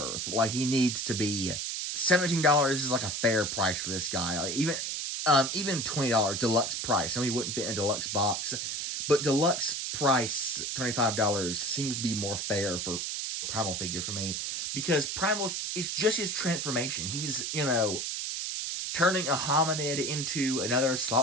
Like, he needs to be... $17 is like a fair price for this guy. Like, even $20 deluxe price. I mean, he wouldn't fit in a deluxe box, but deluxe price $25 seems to be more fair for Primal figure for me, because Primal is just his transformation. He's, turning a hominid into another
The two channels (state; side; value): noise; right; hiss, 3 dB below the sound